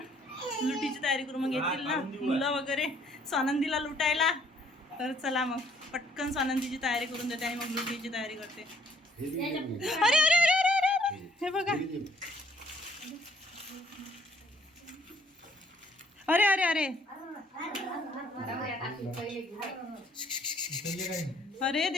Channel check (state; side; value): normal; both; correlation 0.63